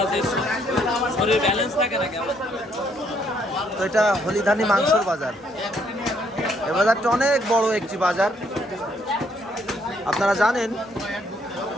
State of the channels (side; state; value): both; normal; correlation 0.69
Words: শরীর ব্যালেন্স থাকে না কেমন। তো এটা হলিধানি মাংসর বাজার। এই বাজারটা অনেক বড় একটি বাজার। আপনারা জানেন